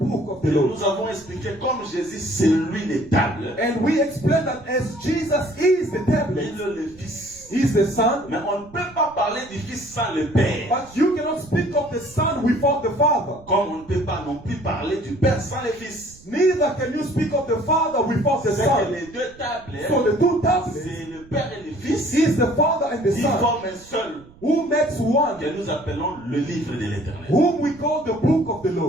book of the Et Lord. nous avons expliqué comme Jésus, c'est lui les tables. And we explained that as Jesus is the tablet, Il est le Fils. He's the Son, Mais on ne peut pas parler du Fils sans le Père. but you cannot speak of the Son without the Father. Comme on ne peut pas non plus parler du Père sans le Fils. Neither can you speak of the Father without the C'est que Son. les deux tables, So the two tablets c'est le Père et le Fils. is the Father and the Ils Son, forment un seul who makes one, que nous appelons le livre de l'Éternel. whom we call the book of the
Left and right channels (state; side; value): noise; right; rumble, 24 dB below the sound